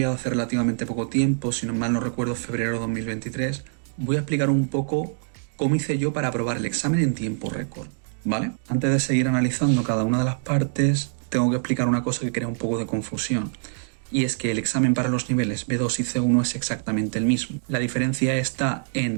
hace relativamente poco tiempo, si no mal no recuerdo febrero de 2023, voy a explicar un poco cómo hice yo para aprobar el examen en tiempo récord, ¿vale? Antes de seguir analizando cada una de las partes, tengo que explicar una cosa que crea un poco de confusión. Y es que el examen para los niveles B2 y C1 es exactamente el mismo. La diferencia está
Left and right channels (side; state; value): left; silent; digital silence